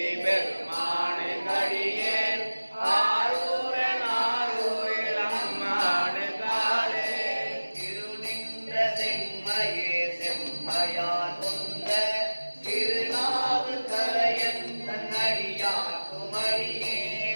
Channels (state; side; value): inverted; both; correlation -1.00